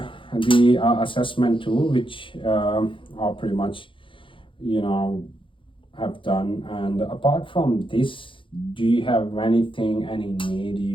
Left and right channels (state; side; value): late; right; 0.25 ms